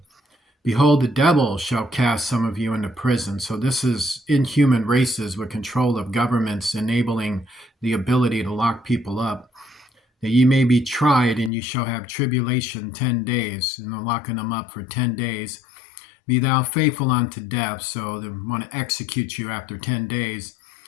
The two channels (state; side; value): drops out; right; at 11.5 s